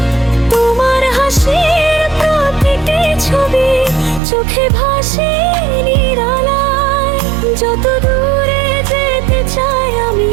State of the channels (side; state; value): left; drops out; at 4.2 s